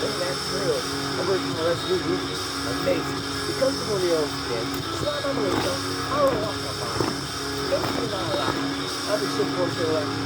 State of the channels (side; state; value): both; identical; correlation 1.00